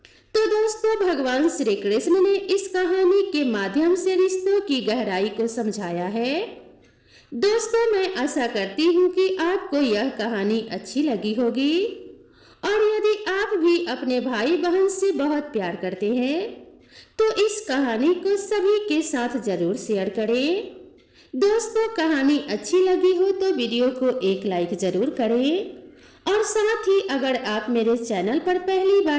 तो दोस्तों, भगवान श्री कृष्ण ने इस कहानी के माध्यम से रिश्तों की गहराई को समझाया है। दोस्तों, मैं आशा करती हूँ कि आपको यह कहानी अच्छी लगी होगी, और यदि आप भी अपने भाई बहन से बहुत प्यार करते हैं तो इस कहानी को सभी के साथ जरूर शेयर करें। दोस्तों, कहानी अच्छी लगी हो तो वीडियो को एक लाइक जरूर करें, और साथ ही अगर आप मेरे चैनल पर पहली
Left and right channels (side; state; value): both; identical; correlation 1.00